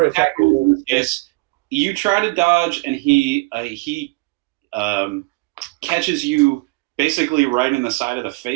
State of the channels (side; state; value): left; quieter; 26.1 dB